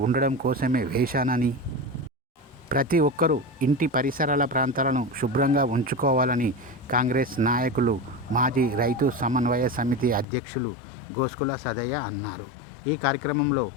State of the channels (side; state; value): right; drops out; at 10.2 s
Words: ఉండడం కోసమే వేశానని, ప్రతి ఒక్కరూ ఇంటి పరిసరాల ప్రాంతాలను శుభ్రంగా ఉంచుకోవాలని కాంగ్రెస్ నాయకులు, మాజీ రైతు సమన్వయ సమితి అధ్యక్షులు గోస్కుల సదయ్య అన్నారు. ఈ కార్యక్రమంలో